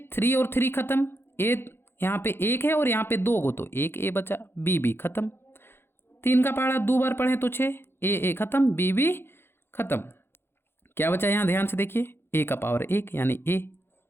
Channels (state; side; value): late; right; 0.11 ms